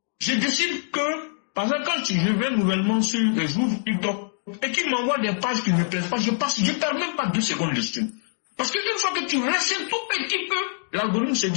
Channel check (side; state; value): right; silent; digital silence